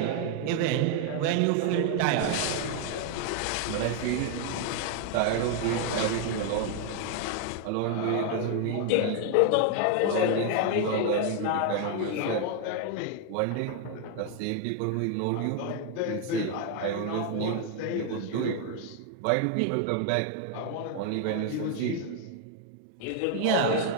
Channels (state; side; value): different; both; correlation 0.00